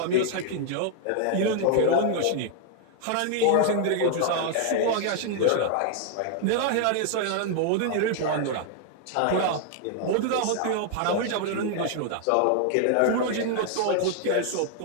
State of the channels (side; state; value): both; different; correlation 0.00